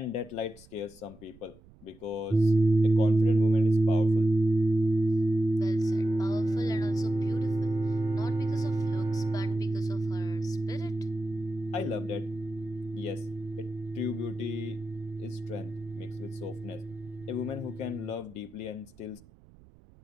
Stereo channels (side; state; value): right; noise; rumble, 25 dB below the sound